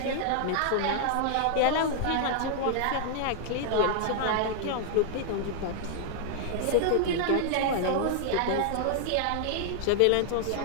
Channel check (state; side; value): different; both; correlation 0.00